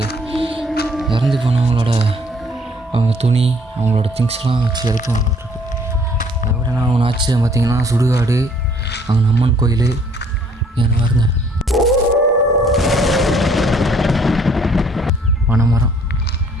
இறந்து போனவங்களோட அவங்க துணி அவங்களோட திங்ஸ்லாம் வச்சு எடுத்துவாங்களாட்டிருக்கு. அதை விட நான் ஒன்று ஆச்சு பார்த்திங்கன்னா, சுடுகாடு அங்கே அம்மன் கோயில் என்ன பாருங்க, பனைமரம்.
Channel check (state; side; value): normal; both; correlation 0.60